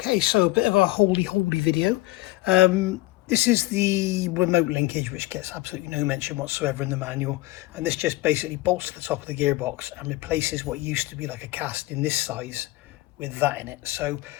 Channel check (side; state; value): right; quieter; 19.3 dB